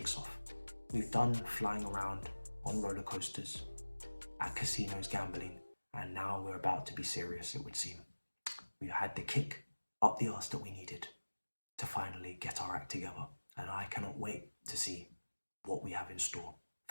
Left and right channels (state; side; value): inverted; both; correlation -1.00